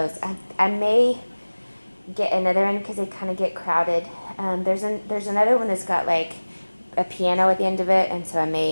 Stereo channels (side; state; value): both; inverted; correlation -1.00